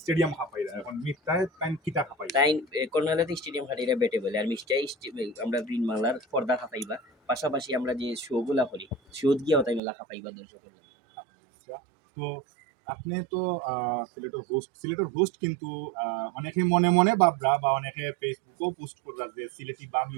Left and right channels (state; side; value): drops out; left; at 9.8 s